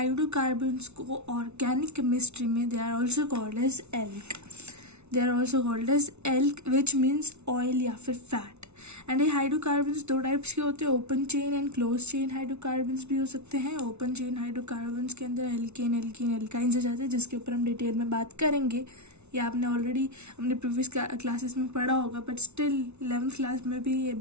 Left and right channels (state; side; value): late; left; 0.81 ms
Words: को ऑर्गेनिक केमिस्ट्री में they are also called as alk which means oil या फिर फैट। एंड ये हाइड्रोकार्बन्स दो टाइप्स के होते हैं, open chain and close chain hydrocarbons भी हो सकते हैं। ओपन चेन हाइड्रोकार्बन्स के अंदर एल्केन एल्काइंस आ जाते हैं, जिसके ऊपर हम डिटेल में बात करेंगे। ये आपने ऑलरेडी अपने प्रीवियस क्लासेस में पढ़ा होगा, बट स्टिल 11th क्लास में भी ये